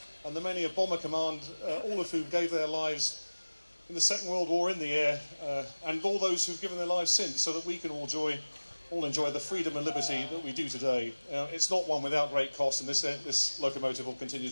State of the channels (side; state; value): both; inverted; correlation -1.00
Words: and the many of Bomber Command, all of who gave their lives in the Second World War in the air, and all those who've given their lives since, so that we can all enjoy the freedom and liberty that we do today. It's not one without great cost, and this locomotive will continue